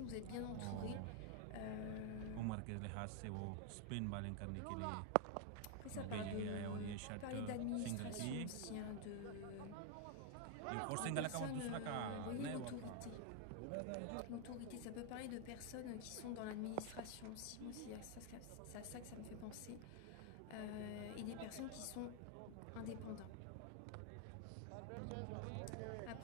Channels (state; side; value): different; both; correlation 0.00